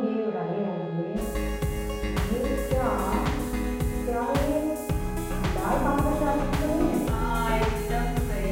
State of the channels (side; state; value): both; identical; correlation 1.00